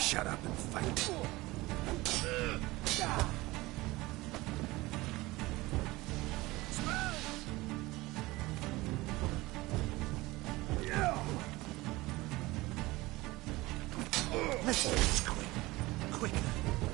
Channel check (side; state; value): left; quieter; 20.3 dB